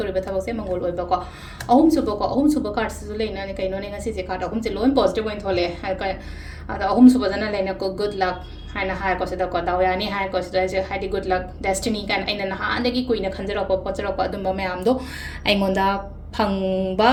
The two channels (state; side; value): identical; both; correlation 1.00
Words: ba thabak se mangol oi ba ko ahum suba card su lai na ni kai no ne ngasi se card ahum se loan positive oin thole hai ka ada ahum suba jana lai na ko good luck haina hai ko se da ko daw ya ni hai ko se je hai di good luck destiny kan aina na ha andagi kuina khanjara ko pochara ko adum ba mayam do ai ngonda phangba